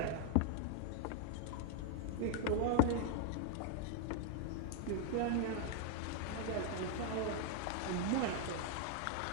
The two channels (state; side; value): different; both; correlation 0.00